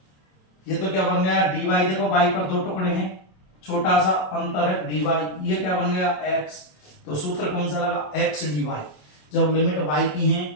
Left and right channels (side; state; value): right; late; 27 ms